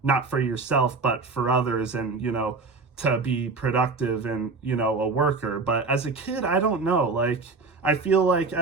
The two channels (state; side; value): quieter; left; 4.1 dB